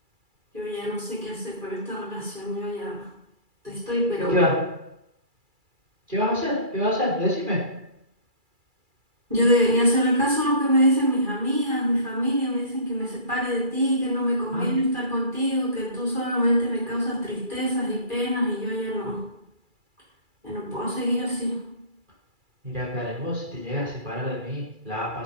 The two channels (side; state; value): left; late; 2.3 ms